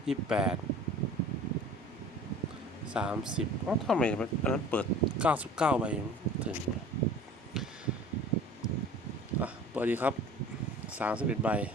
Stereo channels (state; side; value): normal; both; correlation 0.44